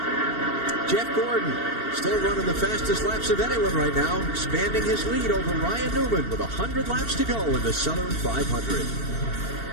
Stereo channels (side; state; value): right; late; 2.7 ms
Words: Jeff Gordon still running the fastest laps of anyone right now, expanding his lead over Ryan Newman with 100 laps to go in the Southern 500.